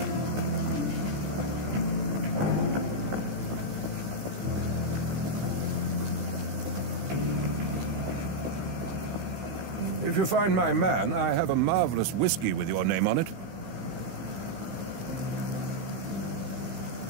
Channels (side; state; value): left; late; 16 ms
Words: If you find my man, I have a marvelous whiskey with your name on it.